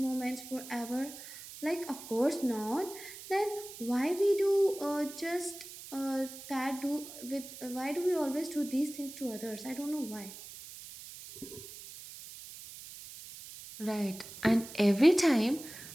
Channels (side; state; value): right; noise; hiss, 14 dB below the sound